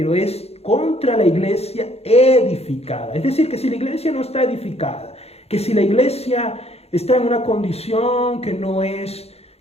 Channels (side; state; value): right; late; 0.30 ms